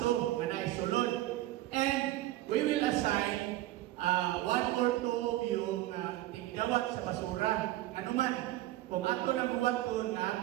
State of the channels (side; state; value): left; quieter; 15.8 dB